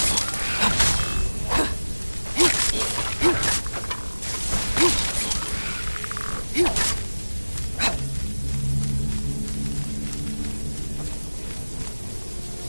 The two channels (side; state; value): both; inverted; correlation -1.00